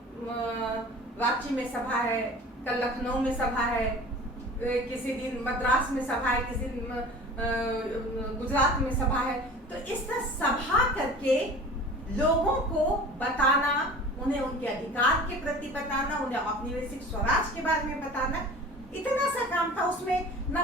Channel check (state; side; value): normal; both; correlation 0.41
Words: रांची में सभा है, कल लखनऊ में सभा है, किसी दिन मद्रास में सभा है, किसी दिन गुजरात में सभा है। तो इस तरह सभा करके लोगों को बताना, उन्हें उनके अधिकार के प्रति बताना, उन्हें औपनिवेशिक स्वराज के बारे में बताना, इतना सा काम था। उसमें न